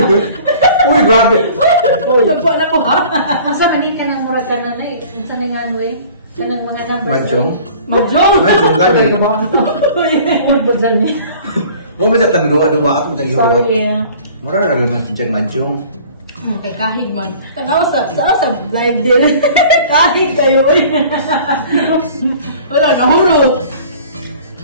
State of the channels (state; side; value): inverted; both; correlation -0.47